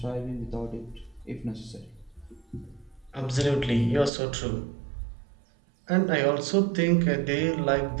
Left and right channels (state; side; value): drops out; left; at 4.1 s